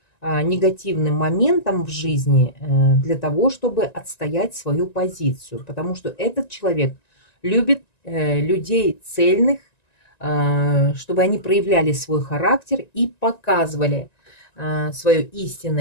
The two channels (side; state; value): right; late; 1.9 ms